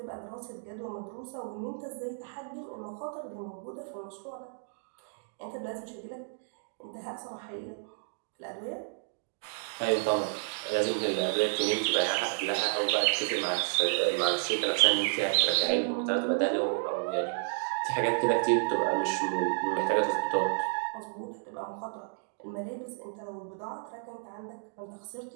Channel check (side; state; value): left; silent; digital silence